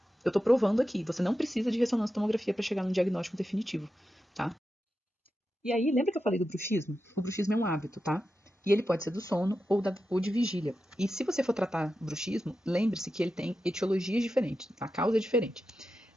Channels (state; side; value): normal; both; correlation 0.90